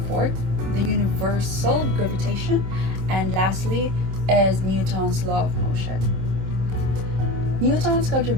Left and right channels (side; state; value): left; late; 26 ms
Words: fourth, the universal gravitation; and lastly is Newton's law of motion. Newton's